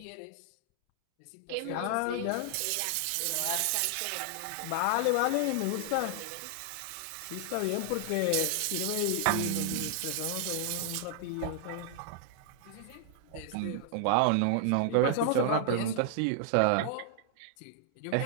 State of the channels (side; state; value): both; different; correlation -0.01